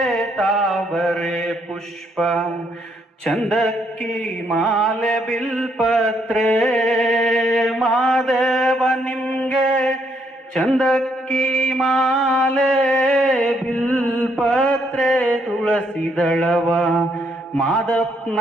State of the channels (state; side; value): normal; both; correlation 0.72